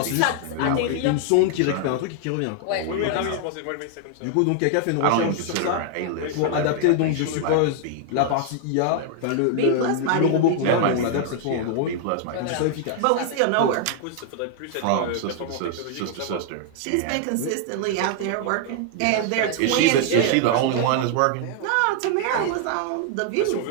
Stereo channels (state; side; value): different; both; correlation 0.00